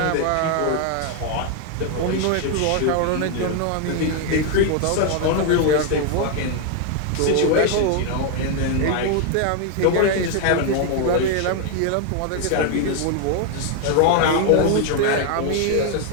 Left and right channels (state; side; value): different; both; correlation 0.01